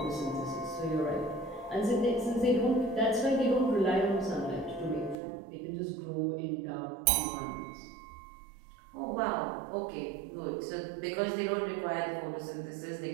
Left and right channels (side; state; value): left; drops out; at 5.2 s